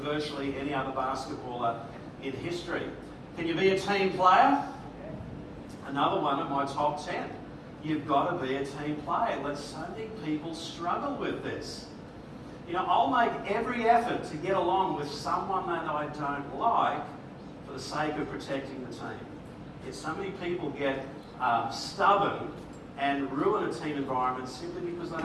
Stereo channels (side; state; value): both; identical; correlation 1.00